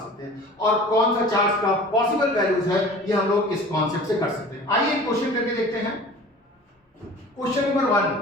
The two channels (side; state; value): both; normal; correlation 0.42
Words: हैं और कौन सा चार्ज का पॉसिबल वैल्यूज है ये हम लोग इस कॉन्सेप्ट से कर सकते हैं। आइए क्वेश्चन करके देखते हैं। Question number 1,